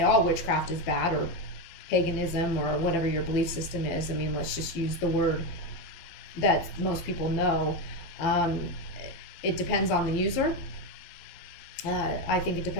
all witchcraft is bad, or paganism, or whatever your belief system is. I mean, let's just use the word that most people know. It depends on the user. I think it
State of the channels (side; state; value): right; late; 12 ms